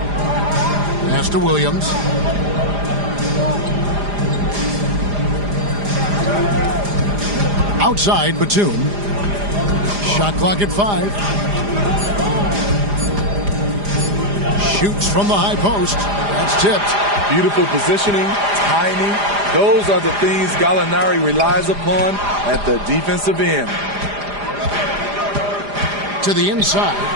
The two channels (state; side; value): late; left; 4.9 ms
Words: Pass to Williams. Outside, Batum. Shot clock at 5. Shoots from the high post. That's tipped. Beautiful positioning, timing. Those are the things Gallinari relies upon at the defensive end. To the inside.